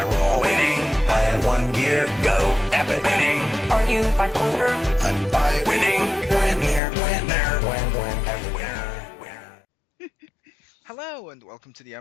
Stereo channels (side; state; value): right; drops out; at 6.8 s